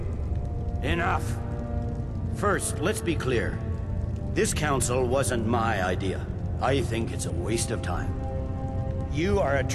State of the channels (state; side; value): identical; both; correlation 1.00